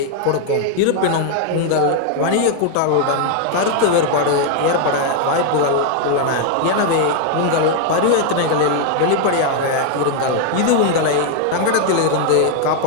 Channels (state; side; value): different; both; correlation 0.00